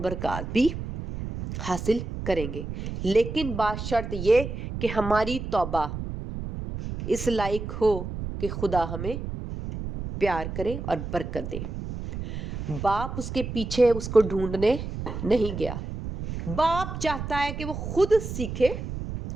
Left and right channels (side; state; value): right; noise; rumble, 7 dB below the sound